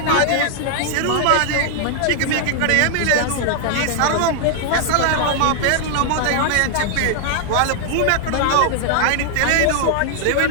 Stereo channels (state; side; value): different; both; correlation 0.00